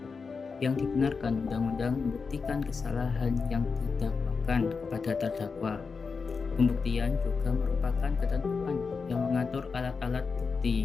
yang dibenarkan undang-undang membuktikan kesalahan yang didakwakan kepada terdakwa. Pembuktian juga merupakan ketentuan yang mengatur alat-alat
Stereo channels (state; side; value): quieter; right; 5.0 dB